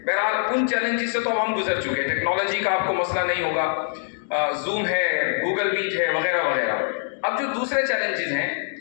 بہرحال ان چیلنجز سے تو ہم گزر چکے، ٹیکنالوجی کا آپ کو مسئلہ نہیں ہوگا، زوم ہے، گوگل میٹ ہے، وغیرہ وغیرہ۔ اب جو دوسرے چیلنجز ہیں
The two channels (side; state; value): right; silent; digital silence